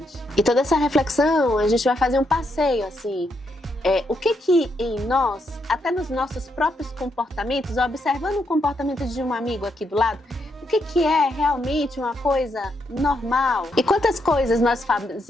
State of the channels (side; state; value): both; normal; correlation 0.78